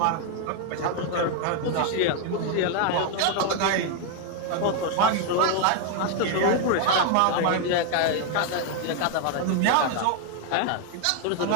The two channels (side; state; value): both; different; correlation 0.01